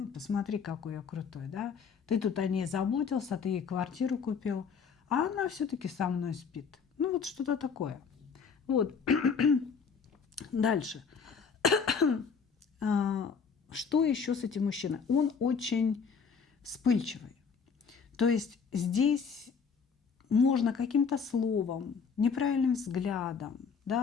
посмотри, какой я крутой, да, ты тут о ней заботился, ты ей квартиру купил, а она все-таки со мной спит. Ну вот что-то такое. Вот. Дальше. Что еще с этим мужчиной? Он очень вспыльчивый. То есть здесь можно каким-то словом, неправильным взглядом,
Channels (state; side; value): quieter; right; 5.9 dB